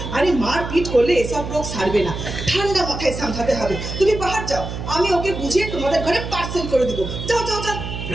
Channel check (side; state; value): right; noise; hum, 7 dB below the sound